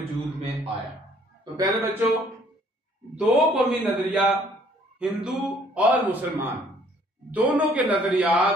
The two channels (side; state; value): both; normal; correlation 0.60